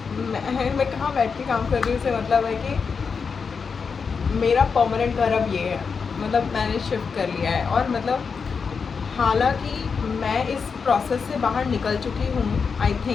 मैं कहाँ बैठ के काम कर रही हूँ, से मतलब है कि मेरा परमानेंट घर अब ये है, मतलब मैंने शिफ्ट कर लिया है, और मतलब हालांकि मैं इस प्रोसेस से बाहर निकल चुकी हूँ, आई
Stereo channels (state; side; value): quieter; right; 5.6 dB